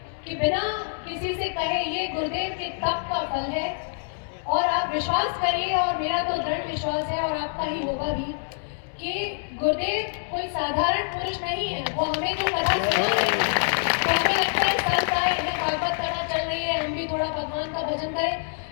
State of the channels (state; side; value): silent; right; 61 dB below the other